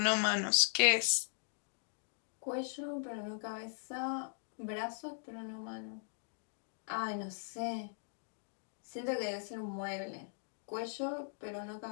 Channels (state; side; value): silent; right; digital silence